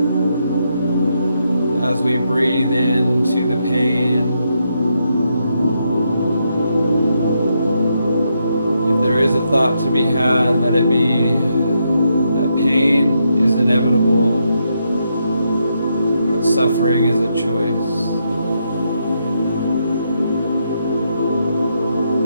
As we breathe into the pain, if there is a thought to be had, let it be that pain is inevitable, but suffering is a choice.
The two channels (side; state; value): both; inverted; correlation -0.80